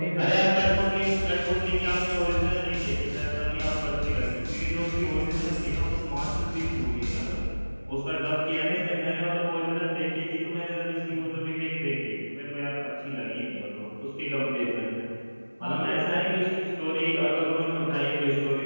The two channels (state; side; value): inverted; both; correlation -1.00